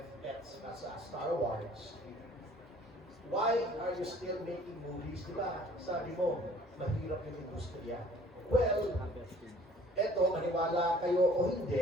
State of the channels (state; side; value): normal; both; correlation 0.54